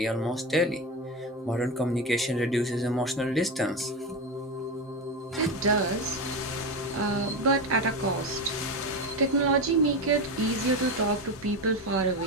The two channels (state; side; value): normal; both; correlation 0.18